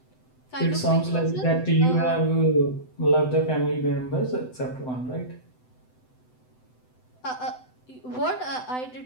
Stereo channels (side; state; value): right; late; 7.9 ms